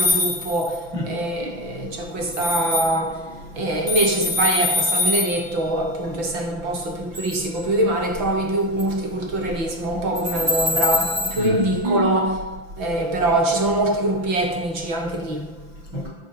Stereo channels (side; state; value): left; late; 5.9 ms